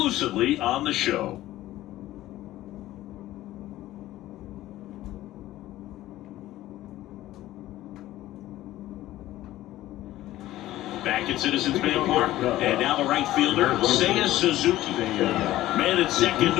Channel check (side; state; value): right; quieter; 15.2 dB